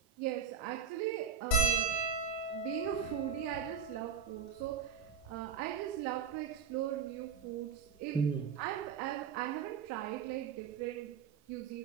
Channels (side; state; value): left; quieter; 7.0 dB